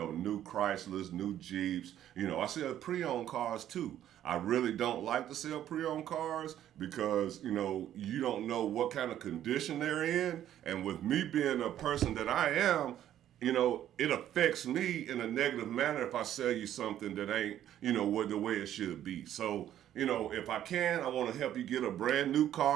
new Chryslers, new Jeeps. You know, I sell pre-owned cars, too. I really don't like to sell pre-owned cars because, you know, you don't know what kind of condition they're in. And with me being a person that I am, you know, it affects me in a negative manner if I sell you something that ain't, you know, the way it should be. So, you know, if I can, I want to help you get a brand new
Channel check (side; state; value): left; quieter; 11.4 dB